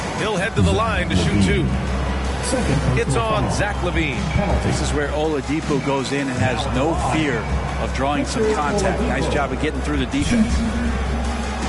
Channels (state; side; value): identical; both; correlation 1.00